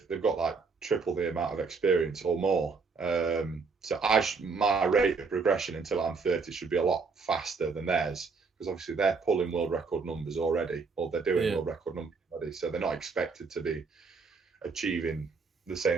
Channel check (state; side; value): quieter; left; 4.7 dB